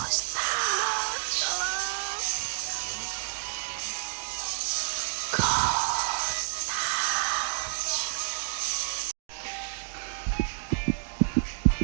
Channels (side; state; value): left; silent; digital silence